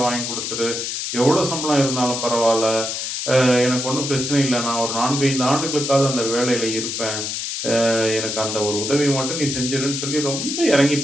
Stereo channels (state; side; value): noise; left; hiss, 3 dB below the sound